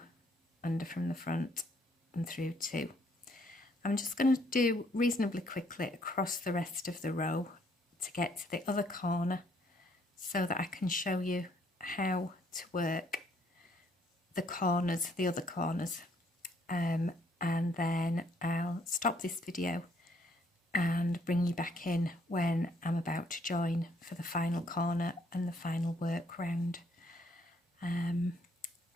under from the front and through 2. I'm just going to do reasonably quickly across the rest of the row to get to the other corner so that I can show you how to work the corners, the other corners, and then I'll stop this video and bring you back in when I'm about to join for the final corner and the final work round.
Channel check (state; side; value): normal; both; correlation 0.67